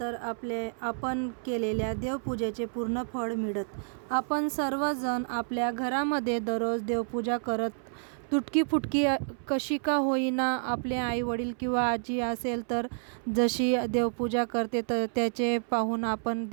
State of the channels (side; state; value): left; silent; 58 dB below the other